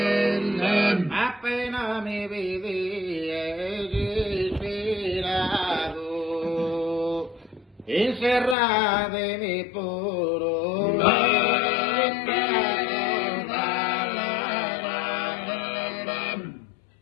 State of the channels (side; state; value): right; drops out; at 8.6 s